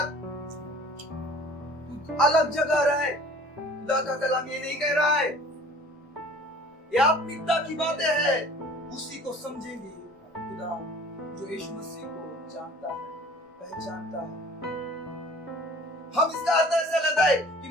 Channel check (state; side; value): normal; both; correlation 0.48